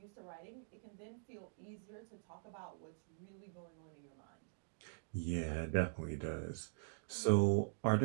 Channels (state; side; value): silent; left; digital silence